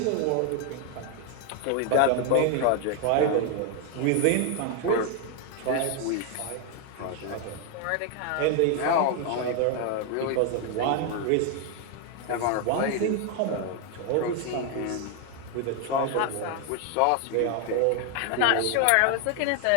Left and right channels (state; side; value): different; both; correlation 0.00